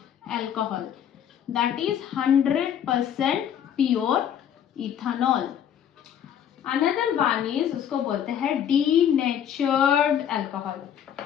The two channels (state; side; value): quieter; right; 9.4 dB